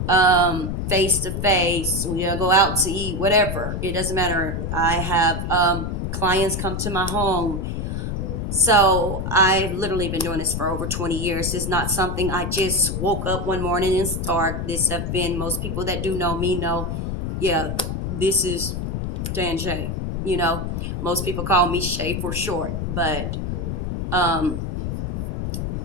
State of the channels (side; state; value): left; noise; rumble, 3 dB below the sound